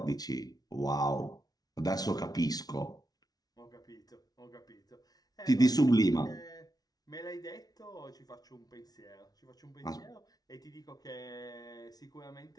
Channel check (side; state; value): right; late; 0.19 ms